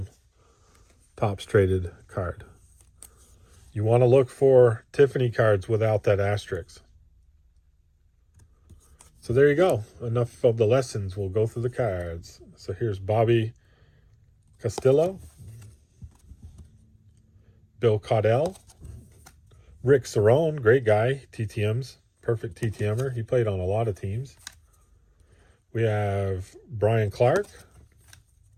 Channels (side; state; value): both; identical; correlation 1.00